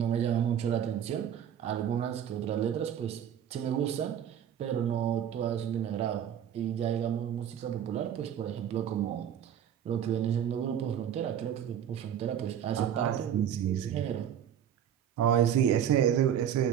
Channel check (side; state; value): left; quieter; 9.5 dB